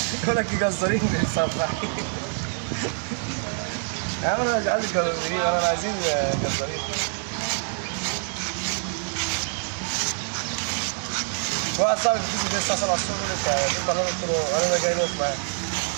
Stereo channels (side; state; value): left; silent; 61 dB below the other